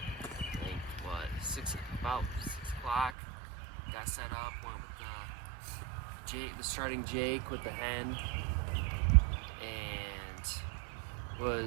think, about 6 o'clock. Got set up, went with the starting Jake with the hen, and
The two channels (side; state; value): left; drops out; at 3.2 s